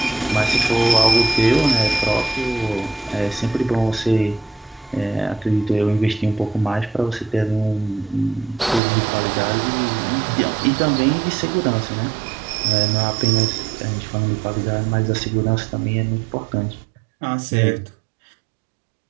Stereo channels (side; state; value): left; drops out; at 8.8 s